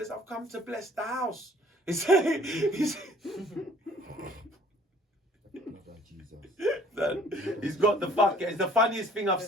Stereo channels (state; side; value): normal; both; correlation 0.55